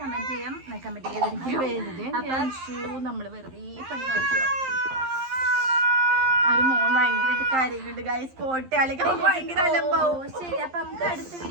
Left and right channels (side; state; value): left; late; 11 ms